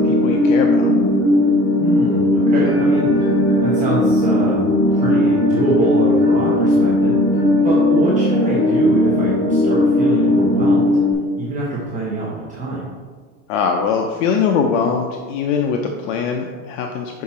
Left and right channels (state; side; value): normal; both; correlation 0.48